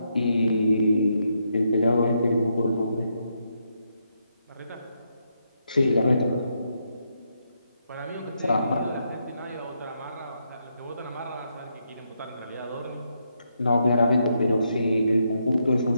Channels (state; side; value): inverted; both; correlation -0.80